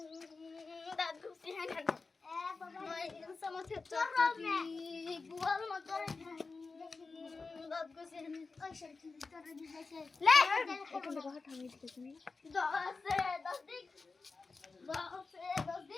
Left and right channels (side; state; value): right; quieter; 4.1 dB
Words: দাদু সিহান এ বাবা সমঝে চটচটি বুয়াল মত রে দাদু সিহান ওই শরীর তোর দিছে লে এখন দেখো হাত আমি দিতেছি 10 দিক 10